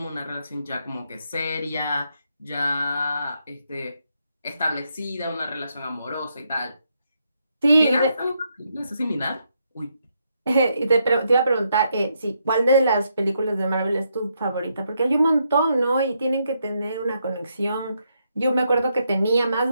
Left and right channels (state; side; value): inverted; both; correlation -0.78